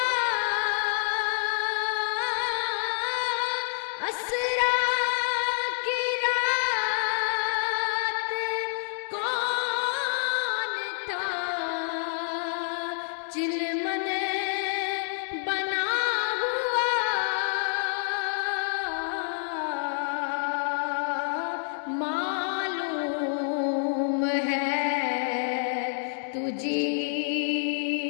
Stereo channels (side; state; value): right; silent; 59 dB below the other